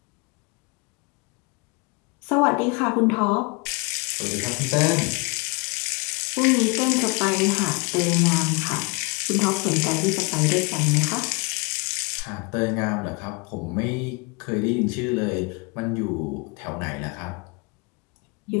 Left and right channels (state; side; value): quieter; right; 29.6 dB